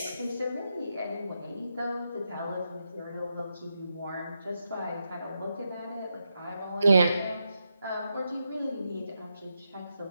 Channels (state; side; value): inverted; both; correlation -0.85